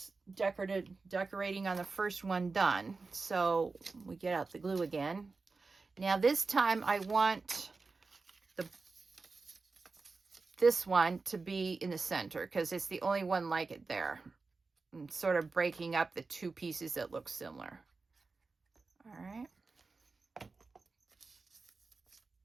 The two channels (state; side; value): quieter; left; 4.1 dB